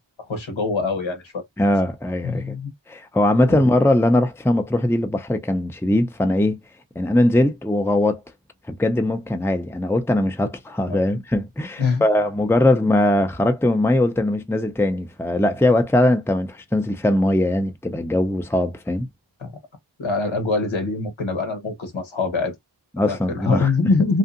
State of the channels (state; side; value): normal; both; correlation 0.79